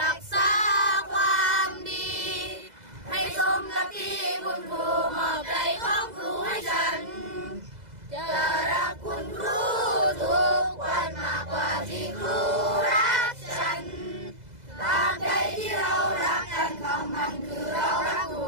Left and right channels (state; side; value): late; left; 2.0 ms